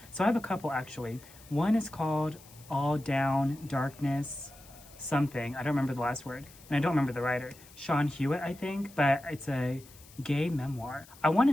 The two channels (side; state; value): left; noise; hiss, 22 dB below the sound